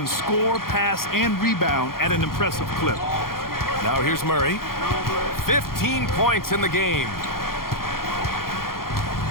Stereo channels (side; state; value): right; late; 0.92 ms